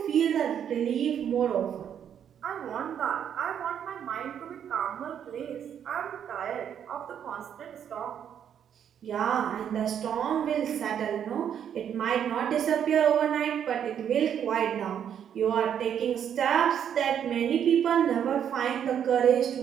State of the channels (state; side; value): quieter; left; 8.9 dB